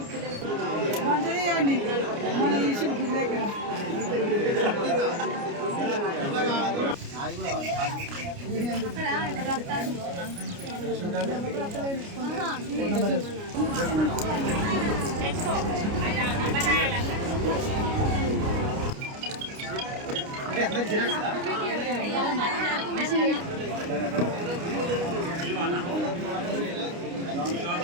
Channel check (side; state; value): left; late; 29 ms